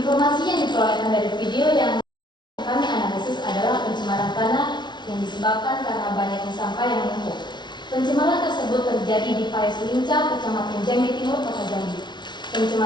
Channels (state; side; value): late; right; 0.21 ms